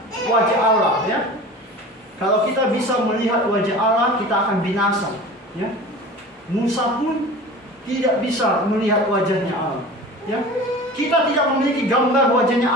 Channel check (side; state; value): both; normal; correlation 0.37